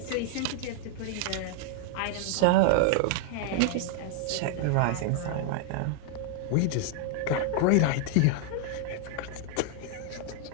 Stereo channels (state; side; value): different; both; correlation 0.00